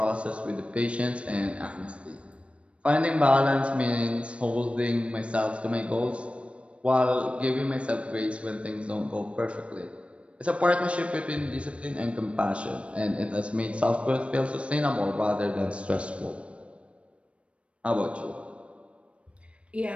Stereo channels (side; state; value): left; late; 0.061 ms